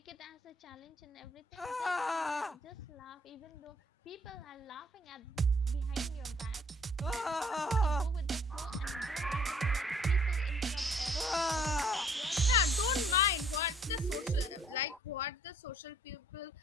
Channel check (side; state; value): both; normal; correlation 0.60